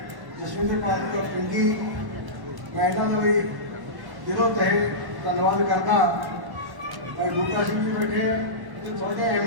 ਜਸਵਿੰਦਰ ਕੌਰ ਪਿੰਡੀ, ਮੈਂ ਇਹਨਾਂ ਦਾ ਵੀ ਦਿਲੋਂ ਤਹਿ ਧੰਨਵਾਦ ਕਰਦਾ। ਭਾਈ ਬੂਟਾ ਸਿੰਘ ਜੀ ਬੈਠੇ ਹੈ, ਤੁਹਾਡੇ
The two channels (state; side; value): late; left; 1.1 ms